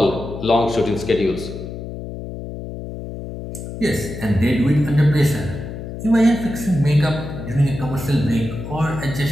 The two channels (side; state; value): left; noise; hum, 9 dB below the sound